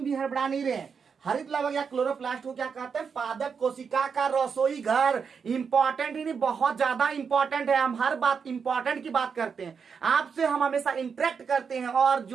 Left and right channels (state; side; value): quieter; left; 6.1 dB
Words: हड़बड़ा नहीं रहे। हरित लवक या क्लोरोप्लास्ट को क्या कहते हैं, पादप कोशिका का रसोई घर। इंपॉर्टेंट ही नहीं, बहुत ज्यादा इंपॉर्टेंट है। हम हर बात इंपॉर्टेंट की बात करते हैं, आपसे हम हमेशा इंटरेक्ट करते हैं, और